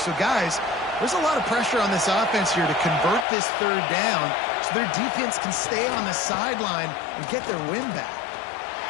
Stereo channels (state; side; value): drops out; right; at 3.2 s